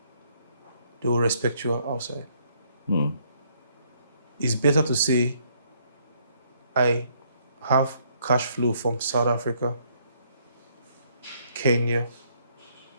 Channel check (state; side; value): inverted; both; correlation -0.69